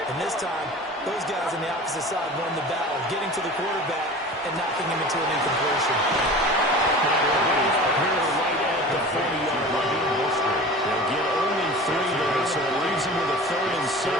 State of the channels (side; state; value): both; normal; correlation 0.37